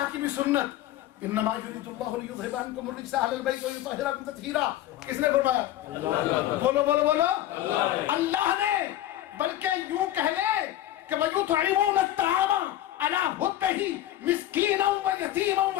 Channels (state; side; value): quieter; right; 13.5 dB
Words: کی بھی سنت. انما یرید اللہ لیذھب عنکم الرجس اہل البیت ویطہرکم تطہیرا. کس نے فرمایا؟ بولو بولو بولو. اللہ نے. بلکہ یوں کہہ لے کہ وَيُطْعِمُونَ الطَّعَامَ عَلَىٰ حُبِّهِ مِسْكِينًا وَيَتِيمًا